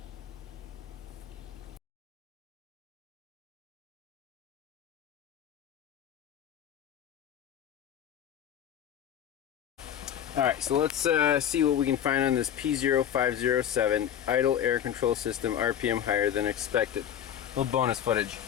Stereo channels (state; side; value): quieter; right; 9.8 dB